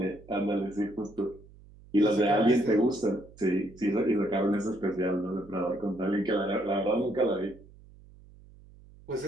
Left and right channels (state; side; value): noise; right; hum, 23 dB below the sound